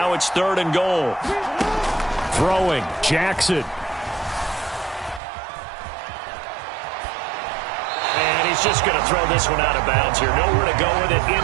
it's 3rd and goal. Throwing, Jackson. And he's just going to throw this one out of bounds here. Nowhere to go with it.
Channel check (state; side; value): drops out; left; at 5.2 s